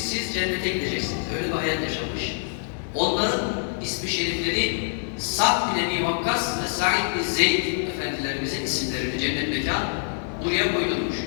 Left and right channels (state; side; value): silent; right; 62 dB below the other